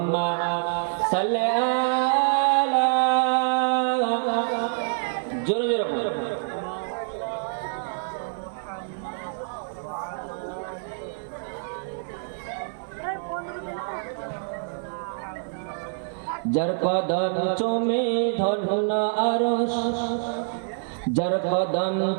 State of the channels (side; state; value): left; silent; 56 dB below the other